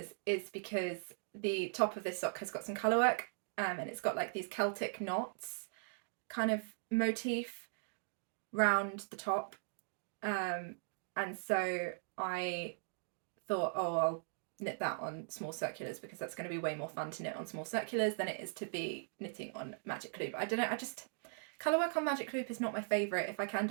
is because the top of this sock has got some colour work, and it's got like these Celtic knots kind of motif round the top. And so I thought, oh, I'll knit that on small circulars because that's going to be way more fun to knit on small circulars than it is to be knitting on magic loop. I don't know, colour work on magic loop is not my favourite. If I can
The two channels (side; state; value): left; silent; digital silence